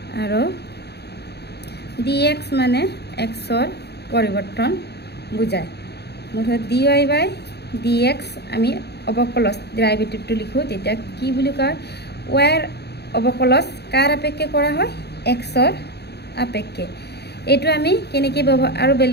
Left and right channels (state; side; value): late; right; 0.48 ms